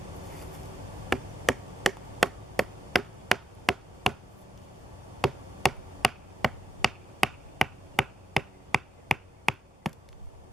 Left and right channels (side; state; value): both; normal; correlation 0.85